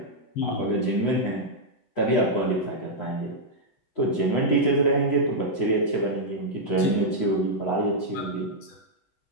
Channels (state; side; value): late; right; 8.0 ms